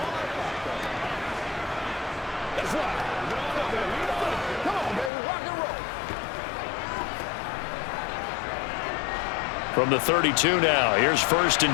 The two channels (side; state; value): right; drops out; at 5.1 s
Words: From the 32 now, here's 1st